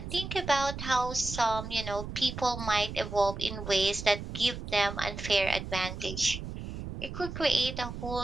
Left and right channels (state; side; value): noise; right; rumble, 8 dB below the sound